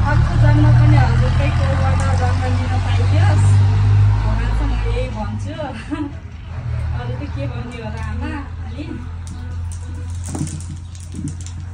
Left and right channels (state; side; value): identical; both; correlation 1.00